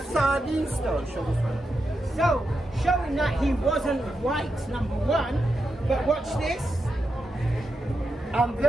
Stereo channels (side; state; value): both; normal; correlation 0.87